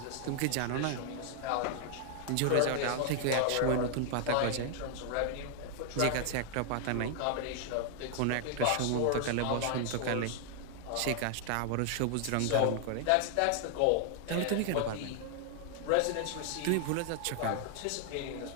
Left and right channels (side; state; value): both; different; correlation 0.00